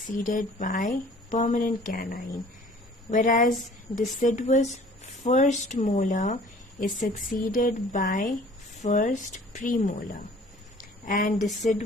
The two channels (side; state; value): both; normal; correlation 0.51